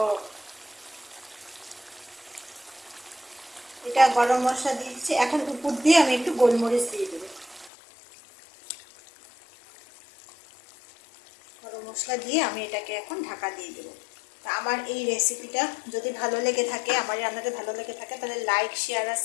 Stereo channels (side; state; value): right; drops out; at 7.7 s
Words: এটা গরম মশলা দিয়েছি, এখন উপর দিয়ে আমি একটু গোলমরিচ দিয়ে দেবো। গরম মশলা দিয়ে আমি এটাকে এখন ঢাকা দিয়ে দেবো। তা আমার এই রেসিপিটা যদি ভালো লেগে থাকে, আমার রান্নাটা ভালো লেগে থাকে, তাহলে লাইক শেয়ার আর